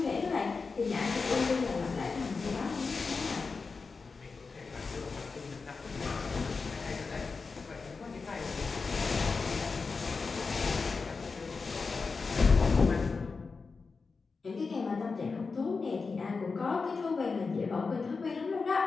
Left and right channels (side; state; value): right; quieter; 4.5 dB